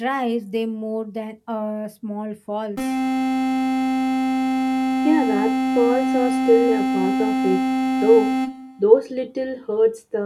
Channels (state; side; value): identical; both; correlation 1.00